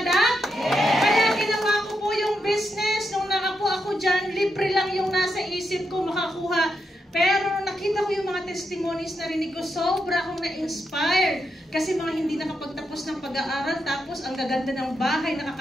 Kaya ginawa ko po yung business. Nung nakapo ako dyan, libre lang yung nasa isip ko makakuha. Pero nakita ko yung mga testimonies na rinig ko, sobra akong na-inspire. Kasi mga hindi nakapagtapos ng pag-aaral, tapos ang gaganda ng bahay,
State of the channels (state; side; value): normal; both; correlation 0.83